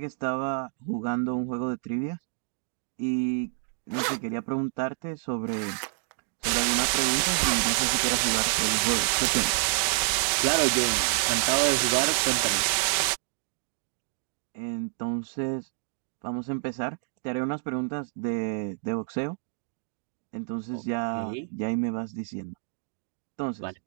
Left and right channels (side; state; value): left; silent; digital silence